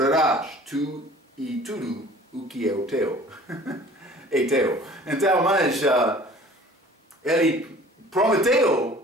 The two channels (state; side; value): normal; both; correlation 0.48